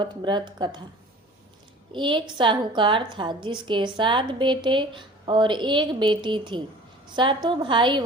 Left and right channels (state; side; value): normal; both; correlation 0.44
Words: व्रत कथा। एक साहूकार था जिसके 7 बेटे और एक बेटी थी। सातों भाई